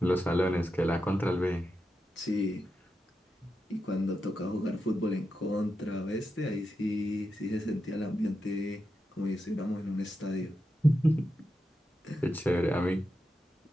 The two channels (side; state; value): both; normal; correlation 0.87